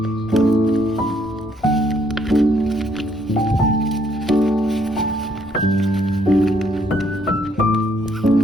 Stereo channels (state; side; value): normal; both; correlation 0.68